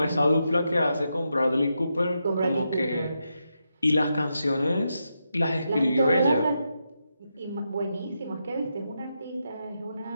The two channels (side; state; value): both; inverted; correlation -0.85